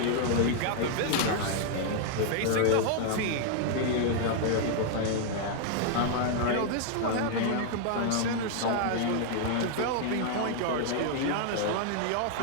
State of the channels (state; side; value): different; both; correlation -0.01